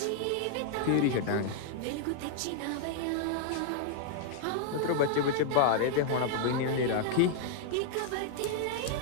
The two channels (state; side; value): different; both; correlation 0.00